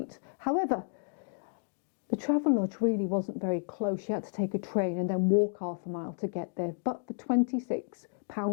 However, The Travelodge really wasn't very close. You had to take a train and then walk half a mile to get there. But for £26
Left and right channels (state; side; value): silent; right; 57 dB below the other